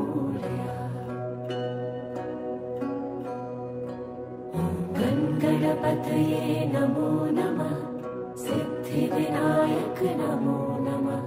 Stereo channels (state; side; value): identical; both; correlation 1.00